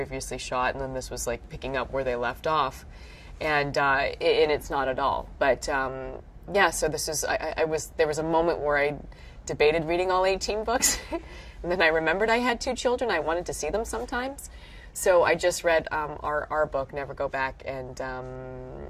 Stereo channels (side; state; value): both; identical; correlation 1.00